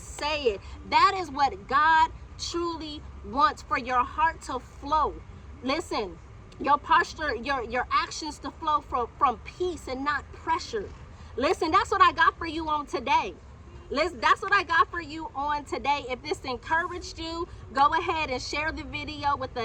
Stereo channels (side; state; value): both; identical; correlation 1.00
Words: it. That is what God truly wants, for your heart to flow. Listen, your posture, your actions to flow from peace and not pressure. Listen, that's what I got for you on today. That's what I got for you on today. If this encouraged you, go ahead and share the video with